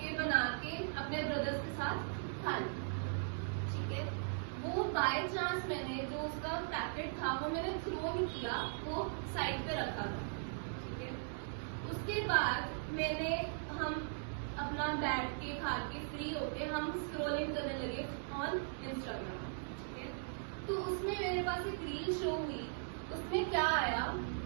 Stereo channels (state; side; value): silent; left; digital silence